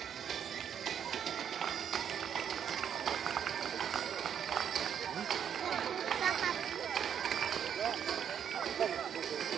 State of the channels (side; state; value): left; quieter; 8.5 dB